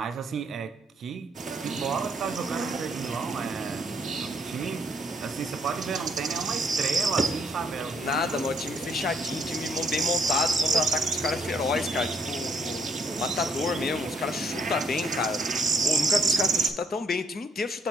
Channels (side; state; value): both; normal; correlation 0.67